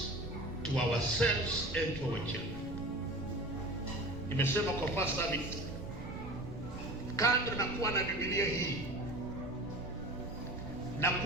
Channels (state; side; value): noise; right; rumble, 11 dB below the sound